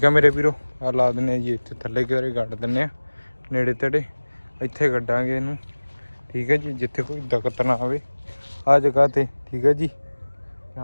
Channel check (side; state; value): both; inverted; correlation -1.00